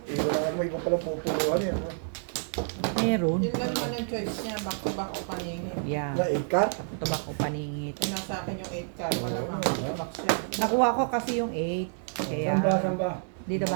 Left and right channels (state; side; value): silent; left; 59 dB below the other